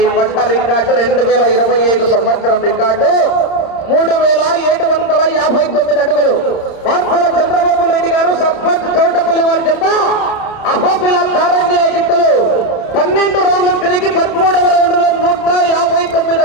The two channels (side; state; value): right; late; 31 ms